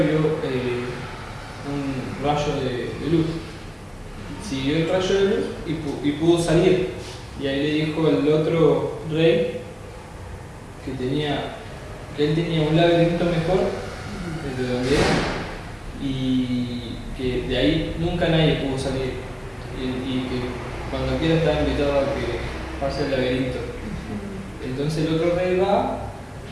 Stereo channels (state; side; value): identical; both; correlation 1.00